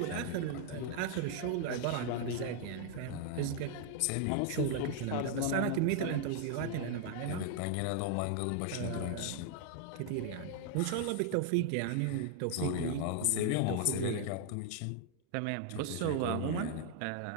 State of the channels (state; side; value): different; both; correlation 0.00